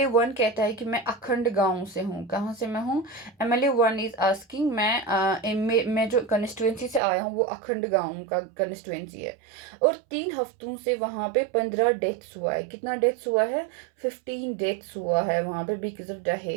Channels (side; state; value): left; drops out; at 7.0 s